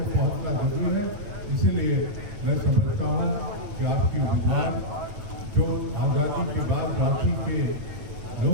पहुँचना जरूरी है। इसीलिए मैं समझता हूँ कि आपकी उम्मीदवार जो आज़ादी के बाद रांची के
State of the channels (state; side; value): late; left; 9.1 ms